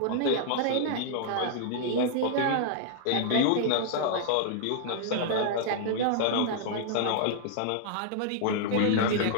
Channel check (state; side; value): different; both; correlation -0.01